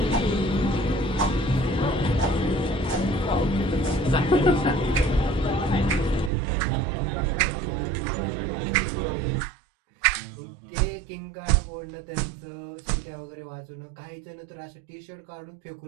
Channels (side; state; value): left; drops out; at 6.3 s